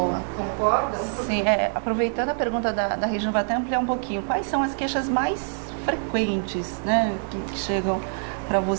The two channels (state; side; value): silent; left; 57 dB below the other